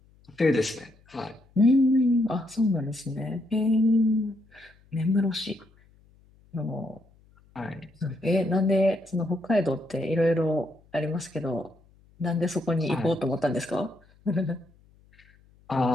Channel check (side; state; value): left; noise; hum, 30 dB below the sound